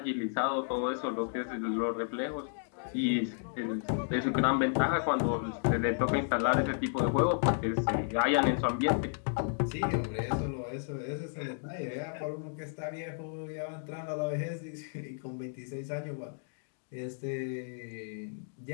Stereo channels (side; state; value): right; silent; digital silence